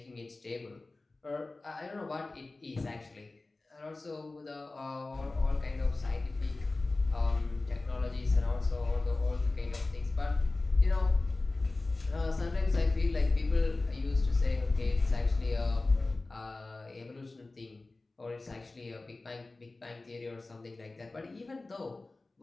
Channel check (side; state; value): right; quieter; 3.2 dB